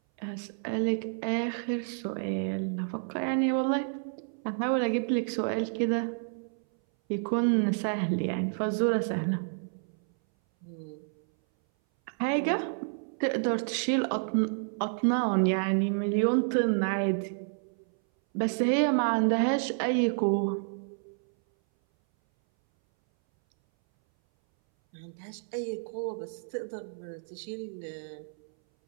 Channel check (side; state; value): left; silent; 58 dB below the other